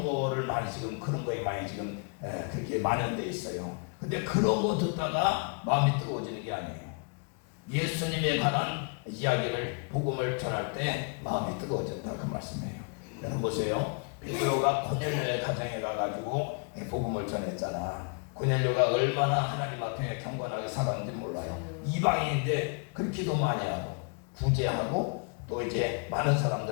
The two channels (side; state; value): right; quieter; 39.2 dB